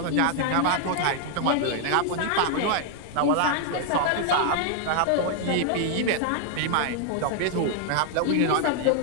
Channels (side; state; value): both; different; correlation 0.00